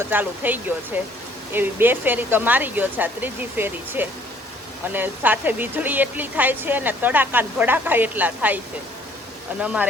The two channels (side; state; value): both; normal; correlation 0.59